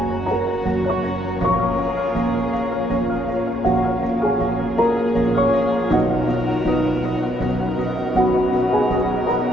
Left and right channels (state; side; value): normal; both; correlation 0.72